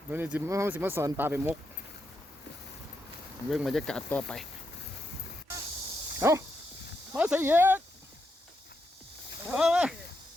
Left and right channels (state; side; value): normal; both; correlation 0.83